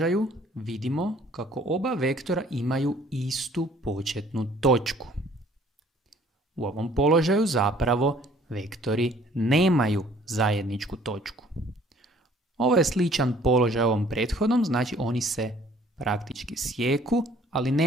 vidimo kako oba vektora imaju istu početnu točku. U ovom položaju zapravo vektori nemaju zajedničku točku. Ovo je sličan položaj ovom prethodnom, znači oni se praktički sjeku, ali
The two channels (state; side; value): normal; both; correlation 0.56